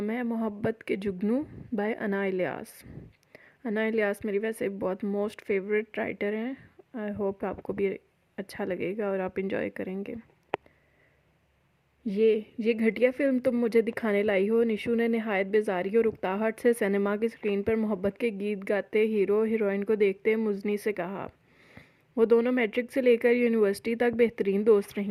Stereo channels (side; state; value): both; identical; correlation 1.00